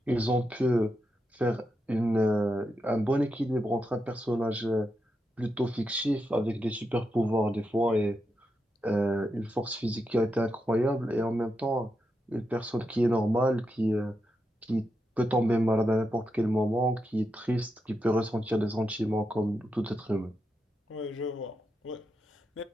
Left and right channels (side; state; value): both; normal; correlation 0.86